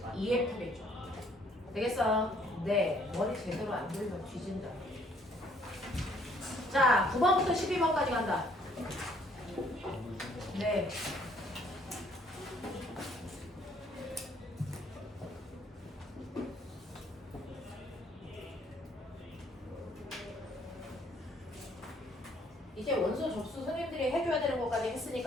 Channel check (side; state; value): both; normal; correlation 0.63